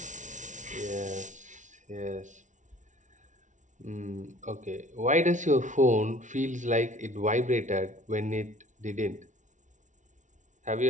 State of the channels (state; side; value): late; left; 0.36 ms